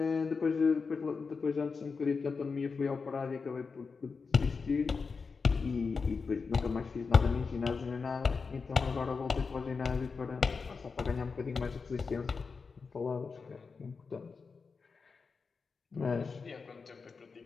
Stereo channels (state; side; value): quieter; right; 4.9 dB